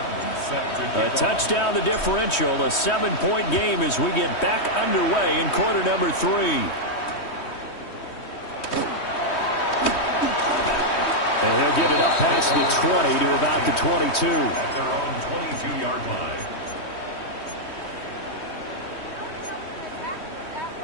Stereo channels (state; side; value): late; right; 3.2 ms